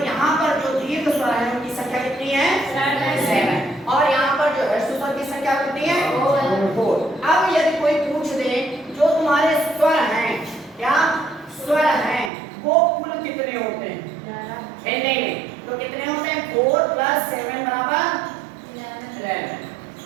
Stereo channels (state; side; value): drops out; left; at 12.3 s